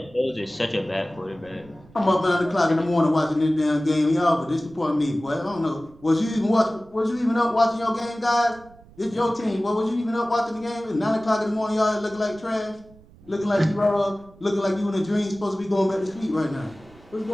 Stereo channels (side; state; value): right; noise; rumble, 25 dB below the sound